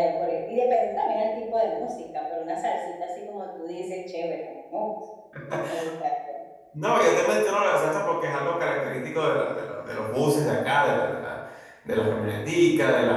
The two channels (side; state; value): both; identical; correlation 1.00